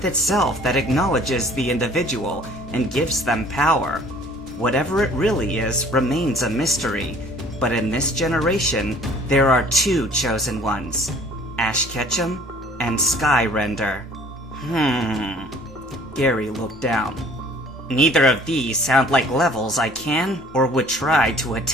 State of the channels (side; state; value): both; normal; correlation 0.53